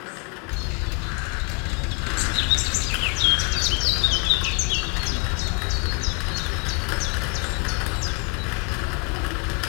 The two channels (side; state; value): right; quieter; 35.8 dB